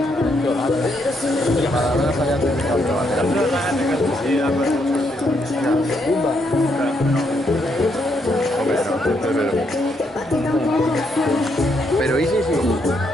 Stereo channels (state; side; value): normal; both; correlation 0.76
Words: Pero ¿y sí?